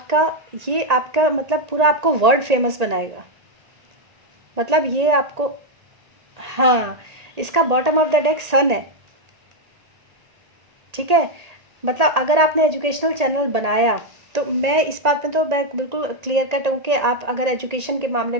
मतलब पूरा आपको वर्ल्ड फेमस बनाएगा। मतलब ये आपको, हाँ, इसका बॉटम ऑफ द डेक सन है। ठीक है, मतलब अगर आपने एजुकेशनल चैनल बनाया तो मैं इस बात में तो मैं बिल्कुल क्लियर कट हूँ कि आप अगर एजुकेशन के मामले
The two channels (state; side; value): late; left; 1.8 ms